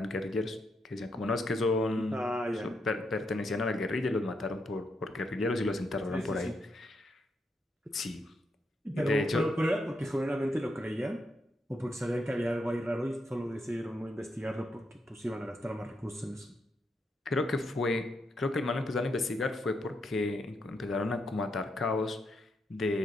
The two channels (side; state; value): both; normal; correlation 0.80